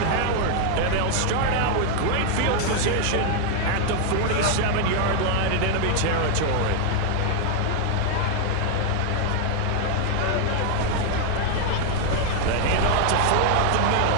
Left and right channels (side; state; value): both; different; correlation 0.00